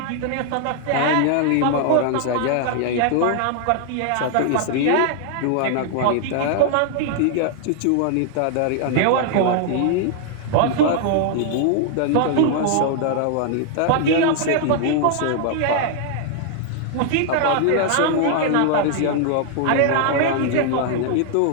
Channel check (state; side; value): different; both; correlation 0.00